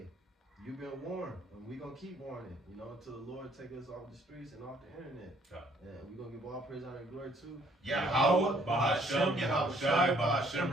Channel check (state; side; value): normal; both; correlation 0.63